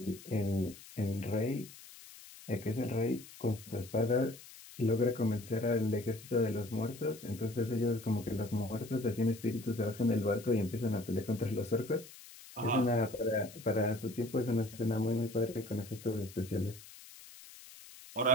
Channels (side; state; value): left; noise; hiss, 18 dB below the sound